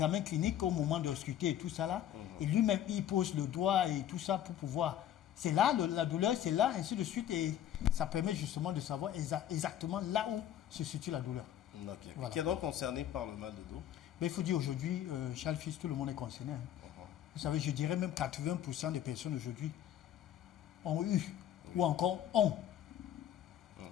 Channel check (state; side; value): quieter; right; 11.1 dB